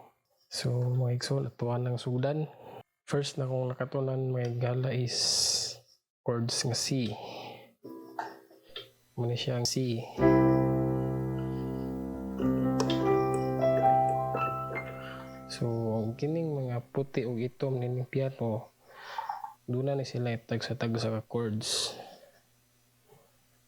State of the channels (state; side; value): identical; both; correlation 1.00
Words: So mga igsoon, atuan ng sudan. First na kung nakatunan mga gala is chords nga C. Muna siyang C. So kining mga puti o itom nining piano, doon na sila tag sa ka chords.